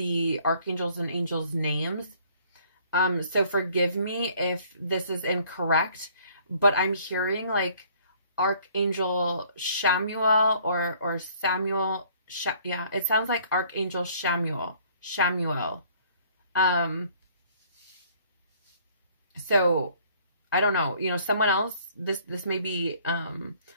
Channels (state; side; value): inverted; both; correlation -0.59